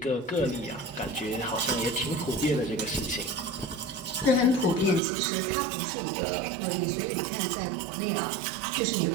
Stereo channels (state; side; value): drops out; left; at 5.0 s